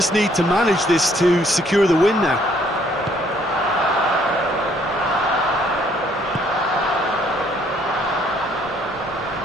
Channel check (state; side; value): normal; both; correlation 0.65